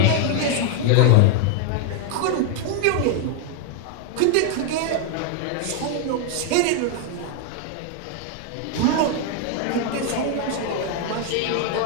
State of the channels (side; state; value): both; different; correlation 0.00